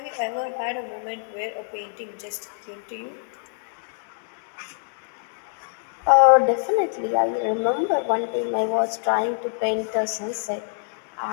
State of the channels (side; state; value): right; silent; digital silence